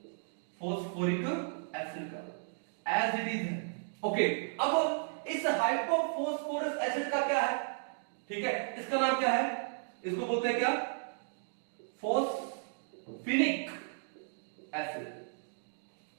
फोस्फोरिक एसिड का एज इट इज है। ओके, अब इस हाइपोफोस्फोरस एसिड का क्या है, ठीक है, इसका नाम क्या है, इसको बोलते हैं क्या फोस्फिनिक एसिड।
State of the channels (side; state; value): left; silent; digital silence